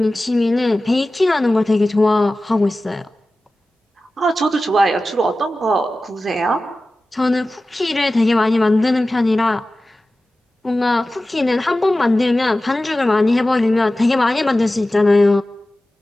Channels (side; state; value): both; normal; correlation 0.95